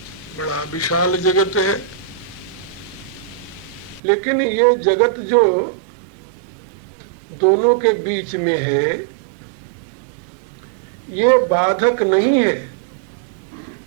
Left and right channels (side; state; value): left; drops out; at 4.0 s